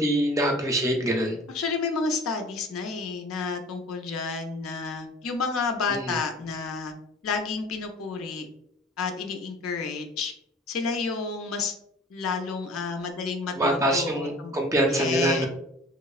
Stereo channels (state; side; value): normal; both; correlation 0.45